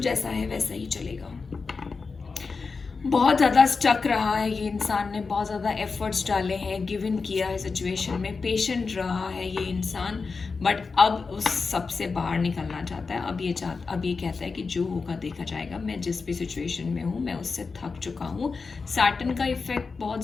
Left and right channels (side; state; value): right; quieter; 4.6 dB